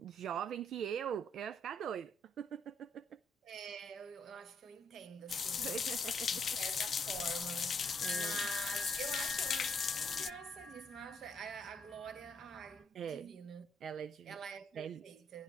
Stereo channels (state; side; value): normal; both; correlation 0.72